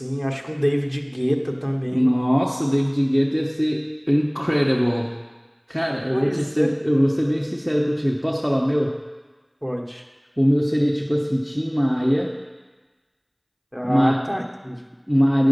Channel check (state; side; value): identical; both; correlation 1.00